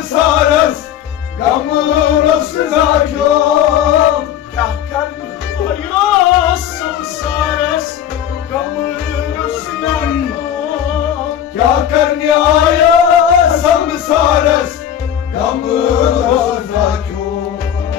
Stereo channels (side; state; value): right; quieter; 10.1 dB